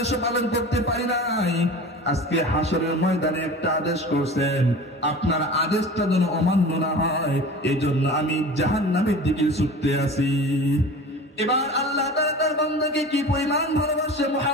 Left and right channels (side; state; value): both; normal; correlation 0.37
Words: পালন করতে পারি নাই। আজকে হাসরের ময়দানে একটা আদেশ করছেন, আপনার আদেশটা যেন অমান্য না হয়, এই জন্য আমি জাহান্নামের দিকে ছুটতে আছি। এবার আল্লাহ তাআলা তার বান্দাকে কি পরিমাণ ভালোবাসে,